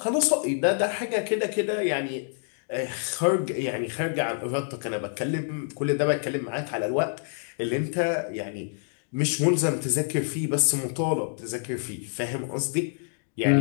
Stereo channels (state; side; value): silent; right; digital silence